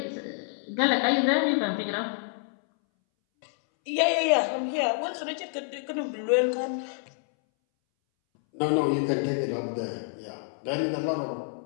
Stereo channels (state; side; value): silent; right; 59 dB below the other